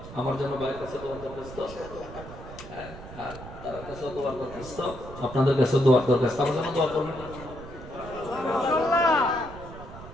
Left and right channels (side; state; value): right; noise; rumble, 14 dB below the sound